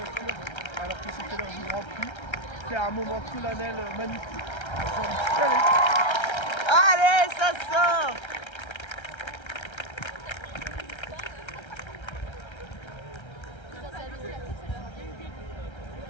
alors que c'était l'heure du Grand Prix. C'est un moment solennel magnifique. J'ai envie de chialer. Allez, ça sort!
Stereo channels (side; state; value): right; late; 1.3 ms